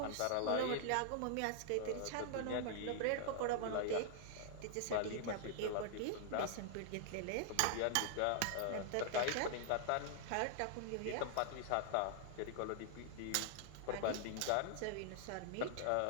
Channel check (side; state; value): both; different; correlation 0.00